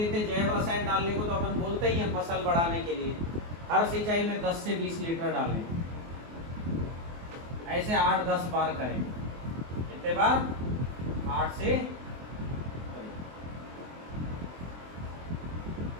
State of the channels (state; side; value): late; left; 24 ms